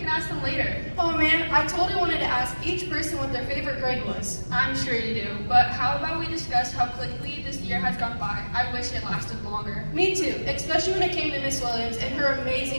ask them later. Oh man, I totally wanted to ask each person what their favorite grade was. I'm sure you do, but how about we discuss how quickly this year has gone by? I wish it lasted longer. Me too, especially when it came to Miss Williams and her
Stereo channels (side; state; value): both; inverted; correlation -1.00